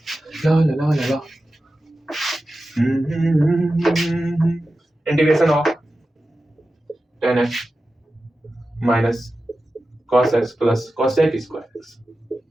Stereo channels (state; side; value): normal; both; correlation 0.93